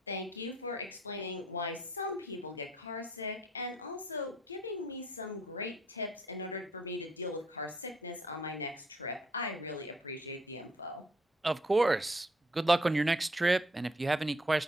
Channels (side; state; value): both; normal; correlation 0.66